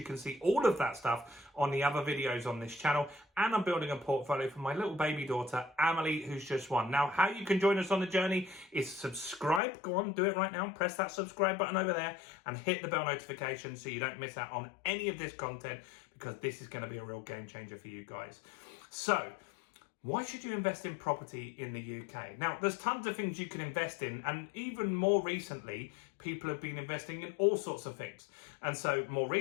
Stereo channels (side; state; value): right; drops out; at 9.6 s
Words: can see all of that stuff on the other videos on this channel. And I'm building a portfolio for my little baby daughter, Amelie, who's just one. Now, how you can join us on the journey is subscribe. Go on, do it right now. Press that subscribe button over there and hit the bell notification so you don't miss out on any of this content, because this is going to be a real game changer for you guys. So, why should you invest in property in the UK? Now, there's tons of things you can invest in, and even more recently, people have been investing in all sorts of things. And so more